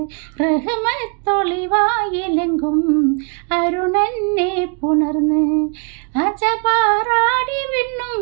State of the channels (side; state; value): left; quieter; 39.0 dB